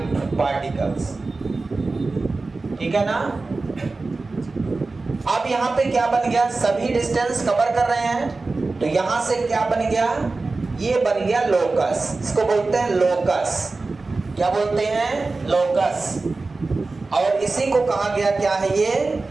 particles, ठीक है ना? अब यहां पे क्या बन गया? सभी डिस्टेंस कवर कर रहे हैं, तो यहां से क्या बन गया? ये बन गया लोकस। इसको बोलते हैं लोकस। क्या बोलते हैं? लोकस। और इसी को कहा गया क्या है?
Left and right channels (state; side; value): quieter; left; 3.6 dB